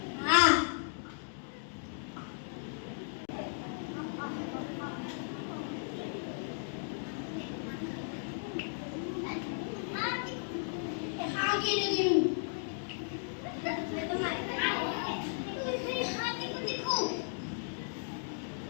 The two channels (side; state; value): right; silent; digital silence